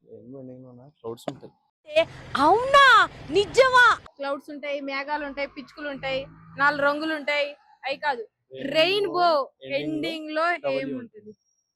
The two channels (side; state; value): both; identical; correlation 1.00